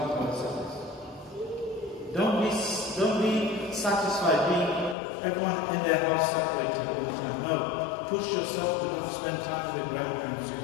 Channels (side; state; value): right; drops out; at 5.0 s